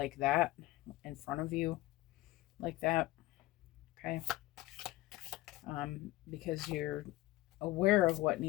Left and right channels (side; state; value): right; quieter; 18.0 dB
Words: that in front of you, like that. Okay. Because you're aware of what